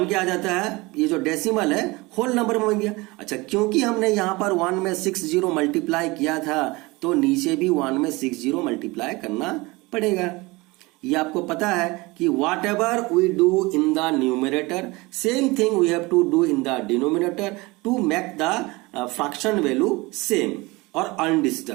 के आ जाता है, ये जो डेसिमल है होल नंबर में बन गया। अच्छा, क्योंकि हमने यहां पर 1 में 6 जीरो मल्टीप्लाई किया था तो नीचे भी 1 में 6 जीरो मल्टीप्लाई करना पड़ेगा। ये आपको पता है कि whatever we do in the numerator same thing we have to do in the denominator to make the fraction value same और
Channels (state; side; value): quieter; left; 23.2 dB